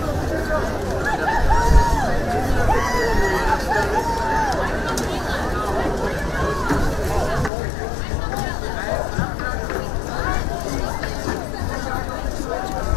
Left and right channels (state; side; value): drops out; right; at 7.5 s